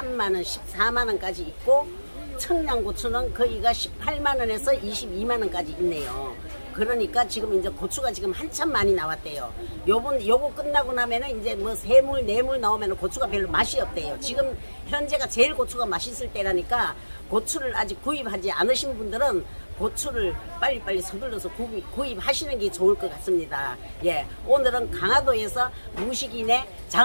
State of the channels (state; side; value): inverted; both; correlation -1.00